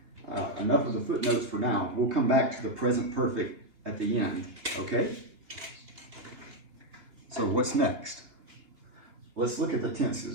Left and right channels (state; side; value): late; left; 3.4 ms